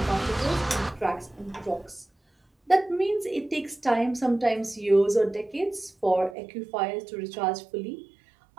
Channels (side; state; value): left; drops out; at 6.4 s